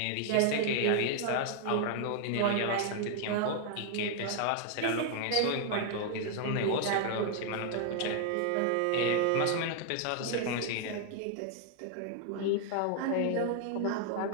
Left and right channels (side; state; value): both; different; correlation 0.00